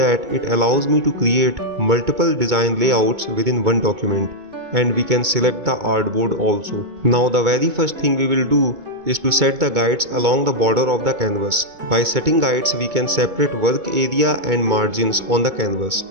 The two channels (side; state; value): left; late; 2.2 ms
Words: it allows me to create multiple design layouts within one document, and we can select the artboard also. Now the very first thing we will do is to set the guides along the border of the canvas. By setting guides we can separate work area and margins on the canvas.